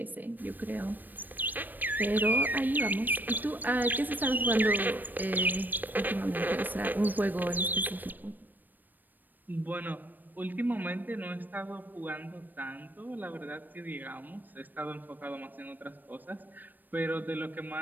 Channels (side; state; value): left; late; 0.089 ms